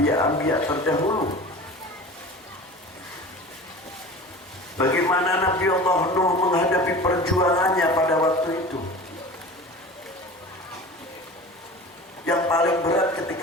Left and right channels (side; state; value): both; normal; correlation 0.37